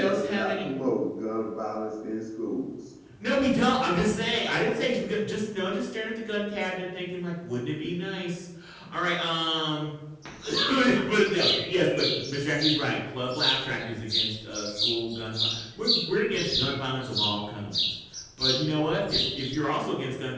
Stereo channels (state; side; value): identical; both; correlation 1.00